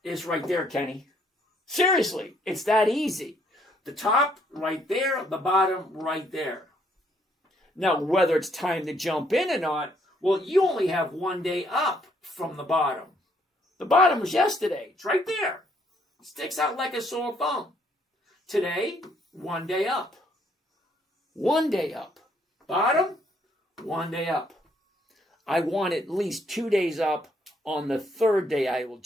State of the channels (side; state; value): both; normal; correlation 0.68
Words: It's right there, Kenny. Seriously, it's that easy. The top right there, the bottom right there. Now, whether it's time to jump in or not, well, you only have 1 day up from the bottom. The bottom was yesterday. It's right there. It sticks out like a sore thumb. Today, 1 day up. 1 day up. Bottom, 1 day up. I want at least 2 days up. On the third day, I will